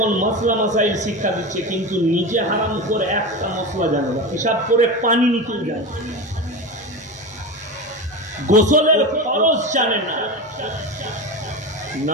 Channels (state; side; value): normal; both; correlation 0.23